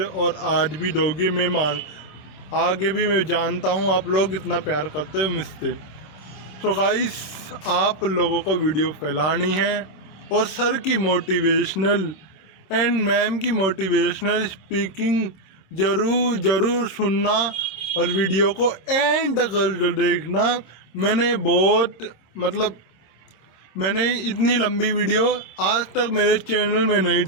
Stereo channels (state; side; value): late; right; 26 ms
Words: और आज भी दोगे। आगे भी मैं जानता हूँ आप लोग इतना प्यार करते हो मुझसे। सो गाइस, आप लोगों को वीडियो फैलानी है और सर की मोटिवेशनल एंड मैम की मोटिवेशनल स्पीकिंग ज़रूर सुनना और वीडियो को एंड कर देखना। मैंने इतनी लंबी वीडियो आज तक मेरे चैनल में नहीं